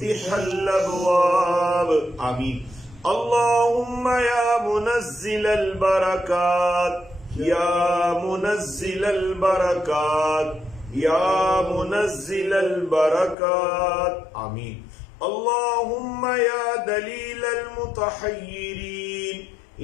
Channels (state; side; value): drops out; right; at 13.4 s